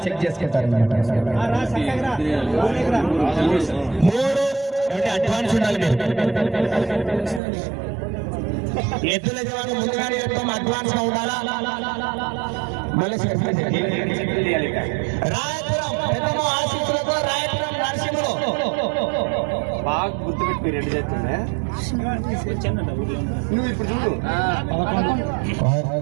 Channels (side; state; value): left; drops out; at 7.4 s